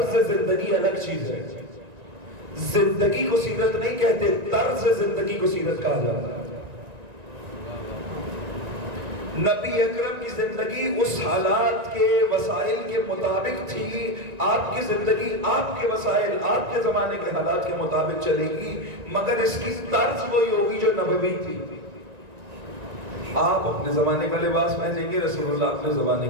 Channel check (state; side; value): late; left; 1.9 ms